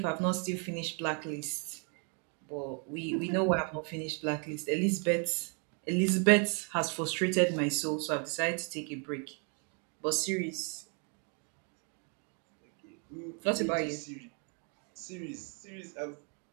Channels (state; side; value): quieter; left; 38.5 dB